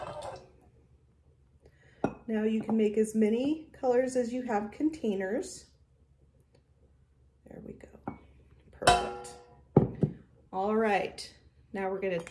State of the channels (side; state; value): both; identical; correlation 1.00